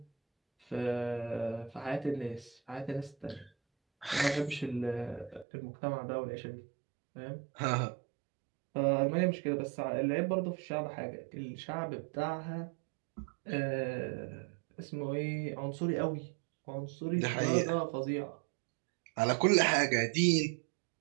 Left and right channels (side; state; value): left; drops out; at 5.5 s